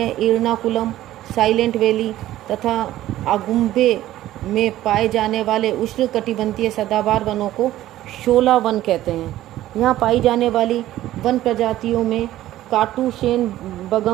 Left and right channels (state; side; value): quieter; left; 14.2 dB